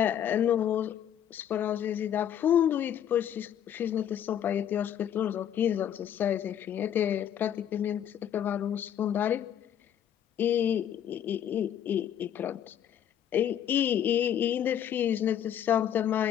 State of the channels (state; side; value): quieter; right; 9.9 dB